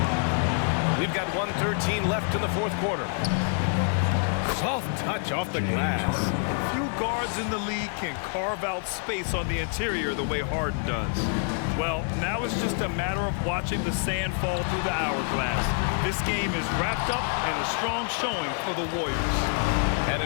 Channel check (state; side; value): silent; right; 56 dB below the other